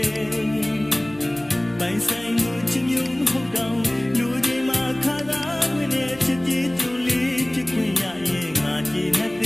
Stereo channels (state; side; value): noise; left; hum, 24 dB below the sound